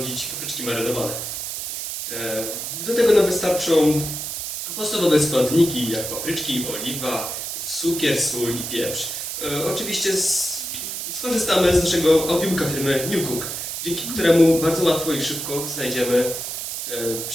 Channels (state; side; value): noise; right; hiss, 5 dB below the sound